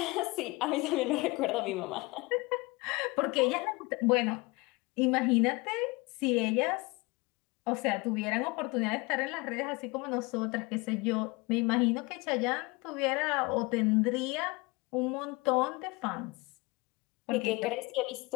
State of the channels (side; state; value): right; quieter; 24.8 dB